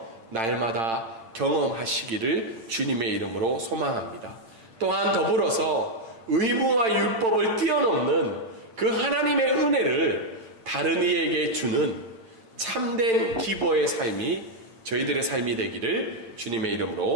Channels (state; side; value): late; left; 8.8 ms